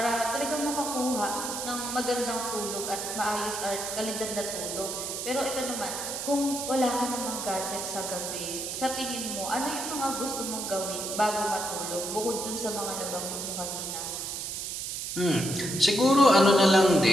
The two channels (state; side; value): noise; right; hiss, 5 dB below the sound